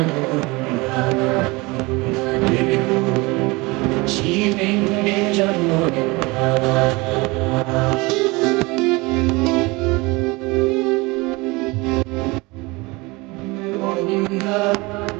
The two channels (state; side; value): quieter; left; 24.2 dB